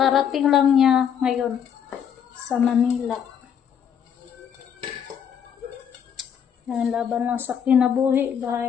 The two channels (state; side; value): quieter; right; 8.3 dB